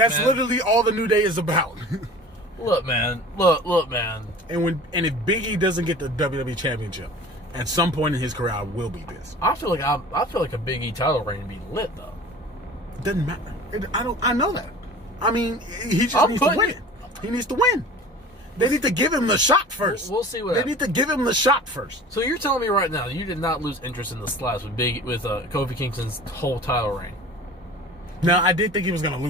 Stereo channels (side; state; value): both; normal; correlation 0.41